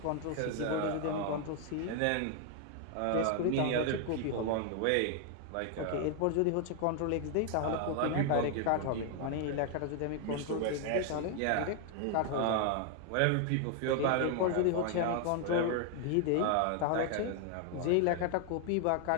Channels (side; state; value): both; different; correlation 0.00